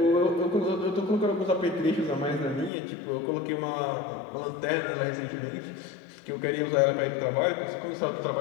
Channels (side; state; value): right; drops out; at 2.7 s